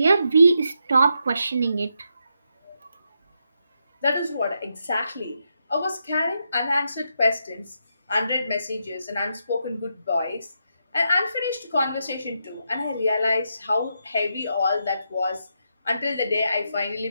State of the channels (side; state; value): both; inverted; correlation -0.82